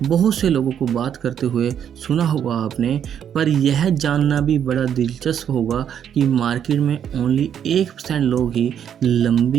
बहुत से लोगों को बात करते हुए सुना होगा आपने, पर यह जानना भी बड़ा दिलचस्प होगा कि मार्केट में ओनली 1% लोग ही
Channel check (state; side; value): quieter; left; 8.9 dB